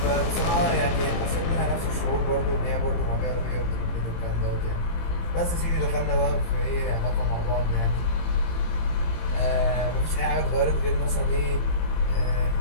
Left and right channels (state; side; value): late; right; 18 ms